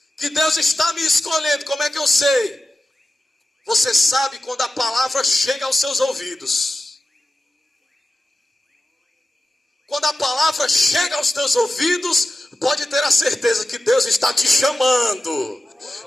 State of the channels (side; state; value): both; normal; correlation 0.93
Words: Que Deus está me escolhendo, como é que eu sei? Você sabe quando a palavra chega aos seus ouvidos. Quando a palavra chega aos teus ouvidos, pode ter a certeza que Deus está te chamando.